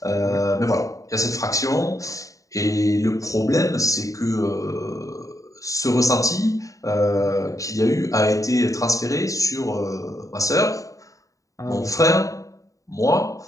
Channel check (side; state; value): right; late; 0.16 ms